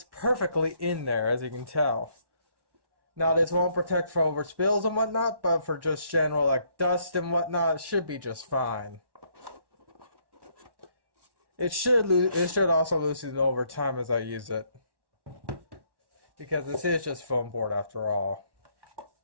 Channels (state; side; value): late; left; 1.1 ms